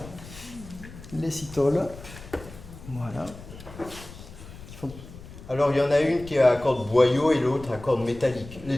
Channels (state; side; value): noise; left; rumble, 16 dB below the sound